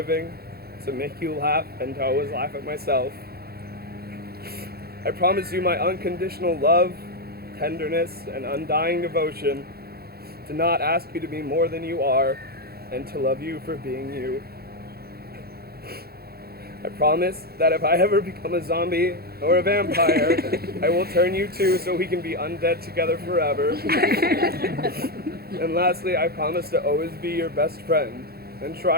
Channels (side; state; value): left; late; 0.45 ms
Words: to make you laugh and to always laugh at myself. I promise you my unconditional love, tenderness, and undying devotion, to not ask you to be more than you are, and to love you for being you. I promise that if I ever become a zombie or a vampire, I will turn you too so we can be undead together forever. And lastly, I promise to always be your best friend and